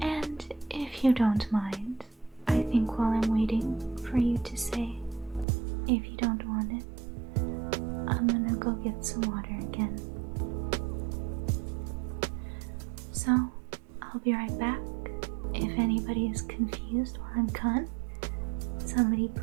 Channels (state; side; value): drops out; left; at 5.5 s